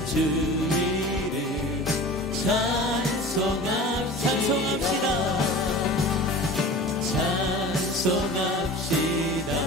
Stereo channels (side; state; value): both; normal; correlation 0.37